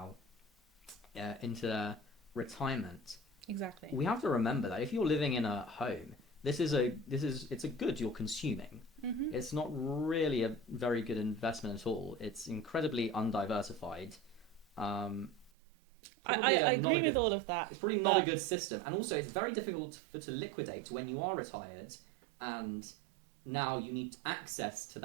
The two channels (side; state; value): left; drops out; at 15.5 s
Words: into their retirement. exactly. We have to remember that if you're living in a home, it's a good you're consuming. Hmm. It's not really a very good investment at all. It's incredibly undiversified. Um, it's probably I not a agree with good. all of that, It's probably not a but good system, and also it's very difficult to liquidate when you are retired, and now you need access to